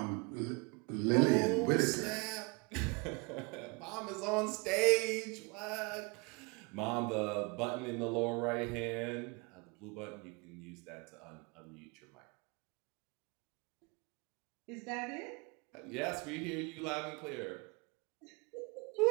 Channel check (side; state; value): left; quieter; 29.2 dB